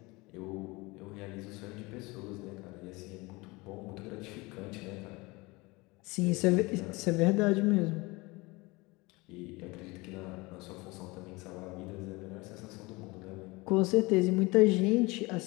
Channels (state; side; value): quieter; right; 24.0 dB